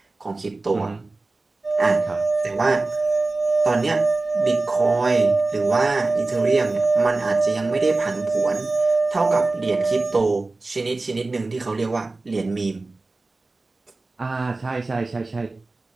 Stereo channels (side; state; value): left; quieter; 3.3 dB